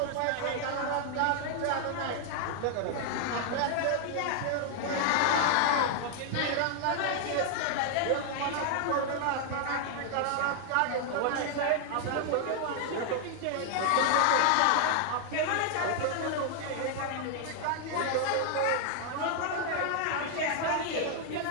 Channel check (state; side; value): different; both; correlation 0.00